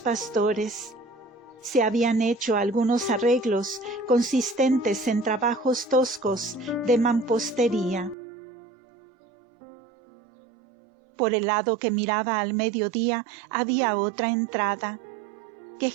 Pastores, se habían hecho algunos arreglos consistentes en trabajos toscos de mampostería. Por el lado que miraba al mediodía había otra entrada, que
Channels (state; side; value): drops out; left; at 8.2 s